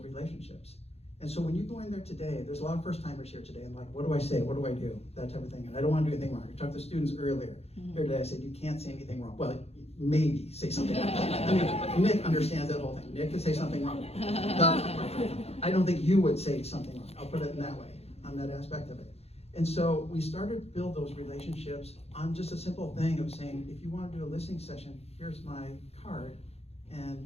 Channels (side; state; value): right; late; 0.30 ms